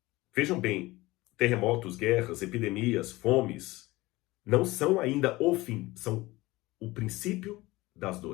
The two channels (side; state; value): right; quieter; 20.0 dB